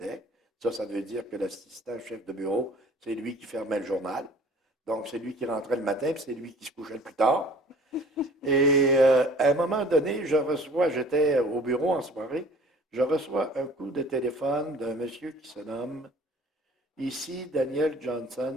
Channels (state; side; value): normal; both; correlation 0.49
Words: Ça veut dire que l'assistant chef de bureau, c'est lui qui fermait le journal. Donc, c'est lui qui rentrait le matin, puis c'est lui qui se couchait le plus tard. Et à un moment donné, j'étais au bureau en soirée, je reçois un coup de téléphone d'un monsieur qui se nomme ici Daniel